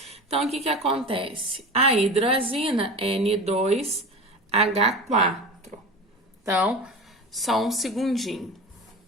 Então, o que acontece? A hidrazina é N2H4. Então, só um segundinho.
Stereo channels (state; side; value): normal; both; correlation 0.31